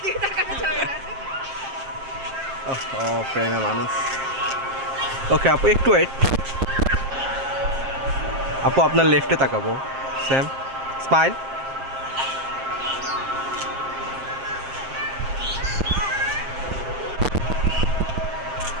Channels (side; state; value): left; late; 7.5 ms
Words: ও প্রেমে মানুষ ওকে আপু একটু ওয়েট আপু আপনার লেফটে তাকাবো সেম স্মাইল